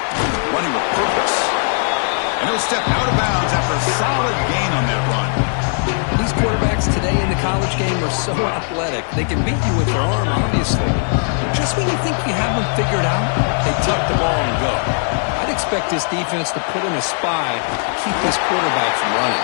Running with purpose. And he'll step out of bounds after a solid gain on that run. These quarterbacks today in the college game are so athletic. They can beat you with their arm, obviously. Just when you think you have them figured out, they tuck the ball and go. I'd expect this defense to put in a spy to keep this quarterback from running.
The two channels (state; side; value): silent; right; 62 dB below the other